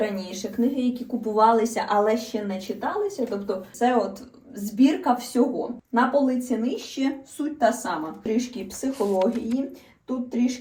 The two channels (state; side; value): identical; both; correlation 1.00